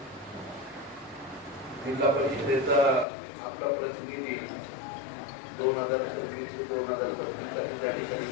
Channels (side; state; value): right; drops out; at 3.1 s